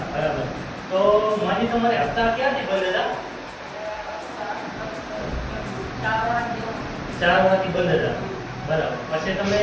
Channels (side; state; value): both; identical; correlation 1.00